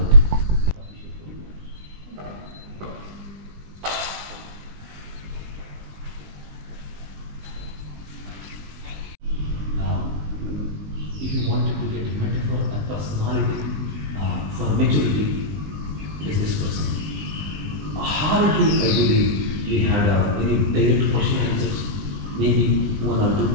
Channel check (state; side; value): late; left; 19 ms